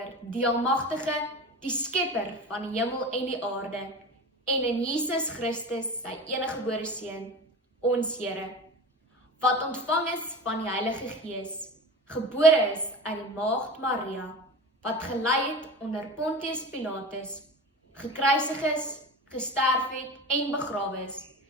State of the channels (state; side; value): normal; both; correlation 0.31